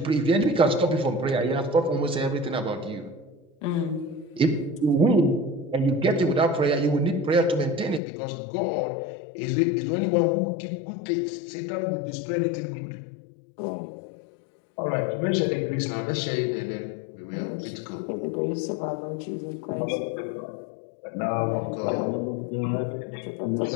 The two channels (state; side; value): drops out; right; at 8.0 s